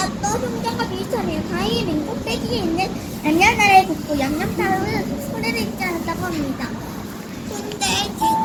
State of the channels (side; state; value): both; identical; correlation 1.00